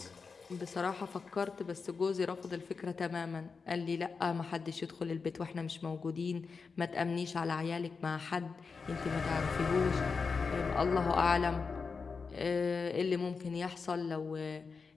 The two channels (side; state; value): right; quieter; 5.0 dB